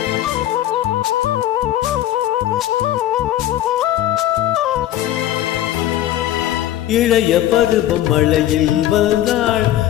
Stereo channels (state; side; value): quieter; right; 13.0 dB